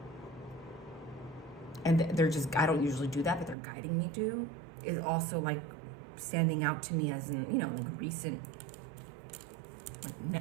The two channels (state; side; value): drops out; left; at 3.6 s